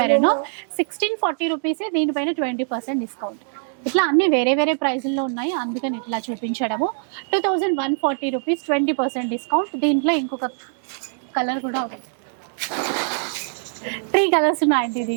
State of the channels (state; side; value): silent; left; 64 dB below the other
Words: 1640 రూపీస్. దీనిపైన 20% డిస్కౌంట్. ఇట్లా అన్ని వేరే వేరే ప్రైజుల్లో ఉన్నాయి, అందుకని ఇట్లా చూపించడము. 2140 రూపీస్, 20% డిస్కౌంట్. దీంట్లో ఇంకొక కలర్ కూడా ఉంది, 3 కలర్స్ ఉన్నాయండి